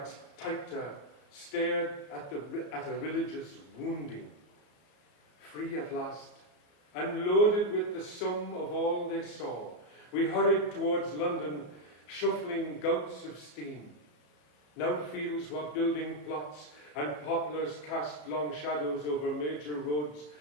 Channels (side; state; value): right; late; 34 ms